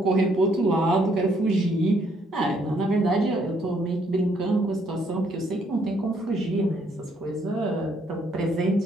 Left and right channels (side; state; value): both; normal; correlation 0.69